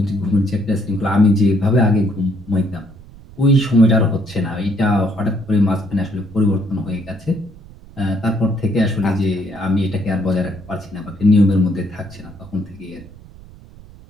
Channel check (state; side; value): noise; right; rumble, 21 dB below the sound